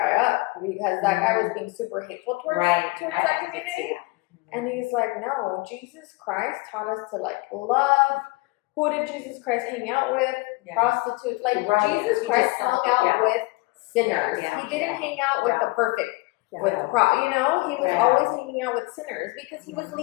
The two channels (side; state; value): right; quieter; 24.7 dB